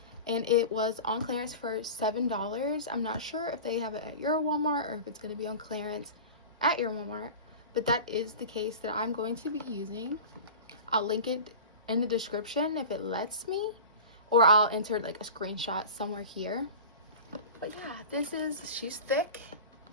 and it was on clearance for $7. I'm not sure if they have it at your Walmart or if it's going to be on clearance at your Walmart, but that is the case that I'm going to be using. I'll link it in the description if it lets me, or I'll enter like a screenshot somewhere here. But yeah, she's thick.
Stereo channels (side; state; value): both; inverted; correlation -0.34